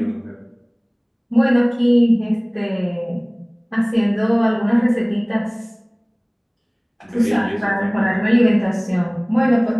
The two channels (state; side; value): identical; both; correlation 1.00